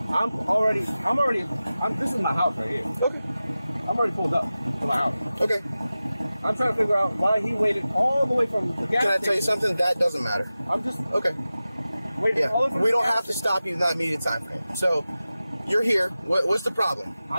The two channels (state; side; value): inverted; both; correlation -0.95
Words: This is my house right here. Okay. I'm already pulled up to my house. Okay. I'm trying to figure out why he waited all the way from the gas Can I tell you station. something? That doesn't matter. I'm just Okay. waiting all the way Yeah. from We the don't gas have to station. stop you in that immediate time frame. So, you're here. What's the problem?